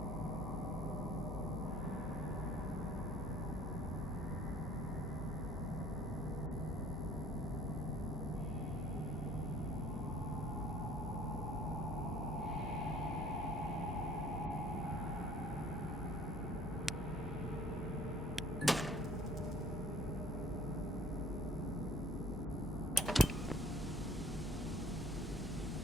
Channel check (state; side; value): normal; both; correlation 0.53